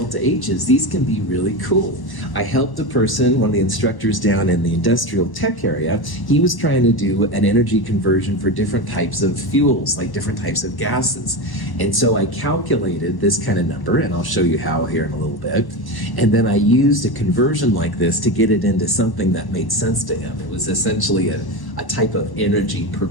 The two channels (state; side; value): late; right; 1.1 ms